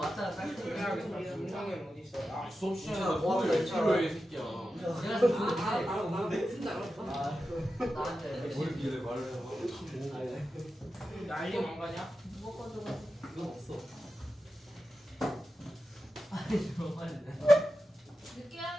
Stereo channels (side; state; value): both; normal; correlation 0.91